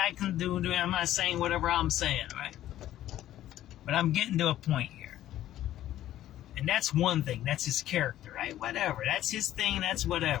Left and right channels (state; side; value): quieter; right; 13.1 dB